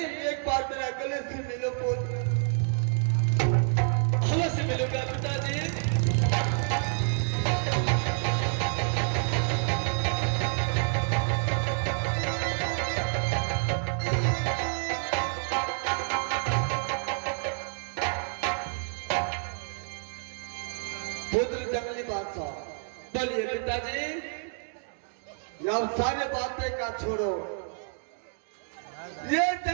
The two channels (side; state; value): left; silent; digital silence